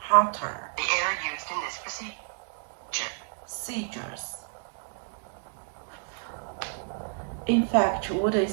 the air used in this procedure. In fact, wood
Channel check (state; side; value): silent; left; digital silence